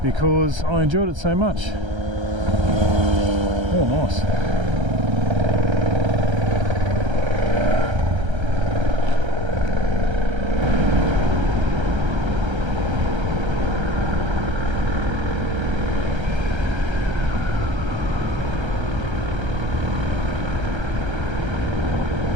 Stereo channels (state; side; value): late; left; 1.3 ms